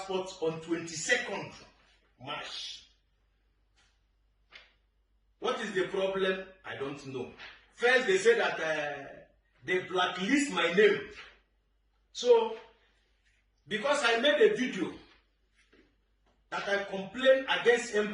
on 22nd March. What is the problem? I don't know. First, they said that they blacklist my name. So, because I made a video that I complained against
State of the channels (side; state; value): both; identical; correlation 1.00